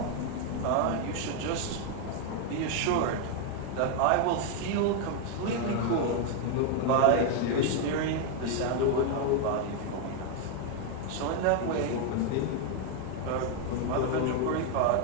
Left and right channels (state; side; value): different; both; correlation 0.00